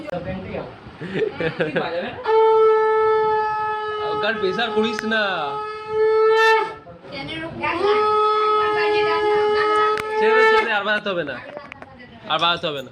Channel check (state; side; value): identical; both; correlation 1.00